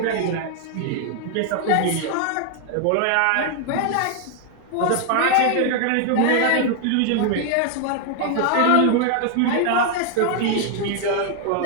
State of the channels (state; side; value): different; both; correlation 0.00